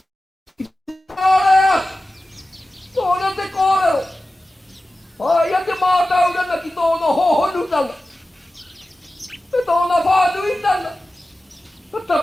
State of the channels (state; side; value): normal; both; correlation 0.95